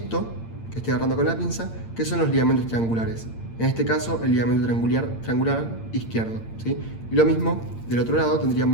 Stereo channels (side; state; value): right; late; 8.8 ms